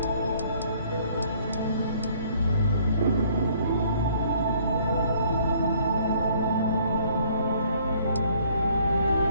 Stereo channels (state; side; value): inverted; both; correlation -0.60